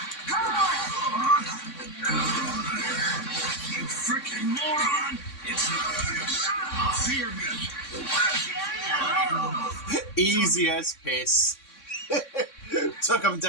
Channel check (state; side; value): late; right; 3.6 ms